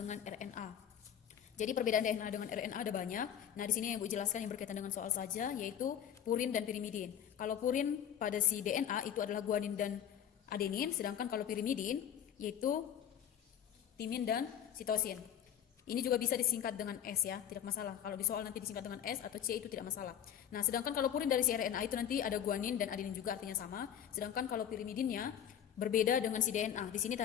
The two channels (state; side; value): quieter; right; 9.9 dB